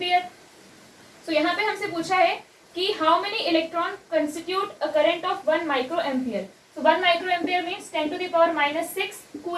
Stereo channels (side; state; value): both; identical; correlation 1.00